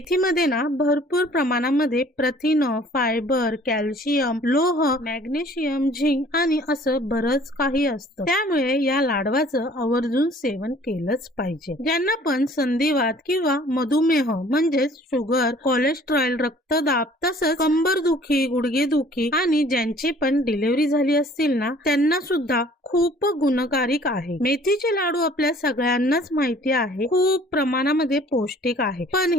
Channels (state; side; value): normal; both; correlation 0.54